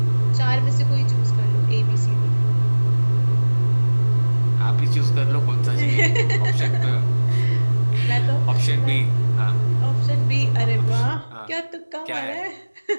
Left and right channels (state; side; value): inverted; both; correlation -1.00